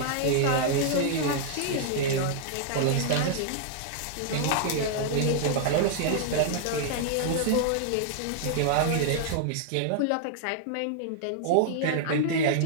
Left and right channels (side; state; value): both; different; correlation -0.01